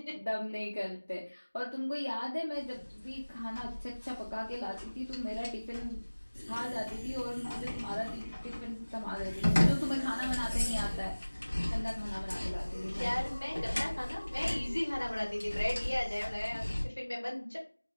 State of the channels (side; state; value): both; inverted; correlation -1.00